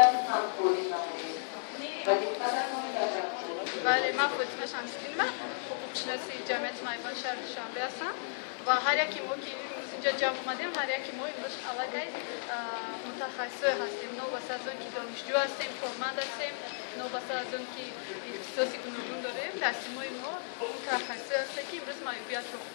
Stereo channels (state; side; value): silent; right; digital silence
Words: همکاری نمایید و دقتتان تشکر. بله، من فاطمه شمس‌دینم، حقوق‌شناس جمعیت معیوبان شهر دوشنبه هستم و هر یکی ما که امروز اینجا جمع اومدیم، هر یکی ما امروز علاقه متخصص هستیم، نوبسته از اون که دانشجو هستیم، کارمند هستیم، نوبسته از اون که اختصاصی گوناگون داریم. تصمیم‌های ما متخصص هست که امروز معیوبیت رو